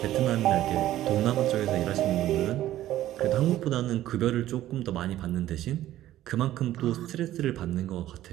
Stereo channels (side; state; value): left; quieter; 13.8 dB